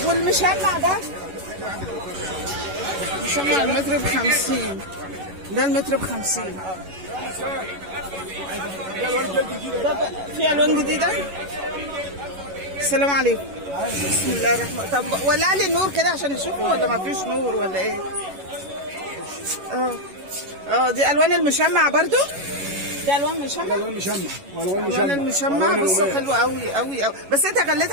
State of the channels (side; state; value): left; late; 11 ms